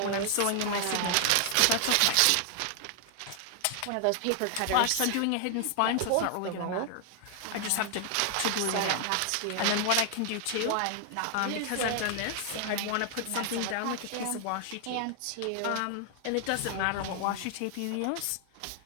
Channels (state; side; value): different; both; correlation 0.00